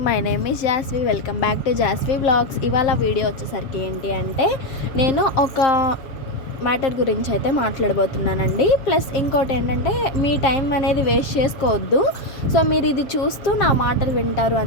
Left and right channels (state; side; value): late; right; 7.3 ms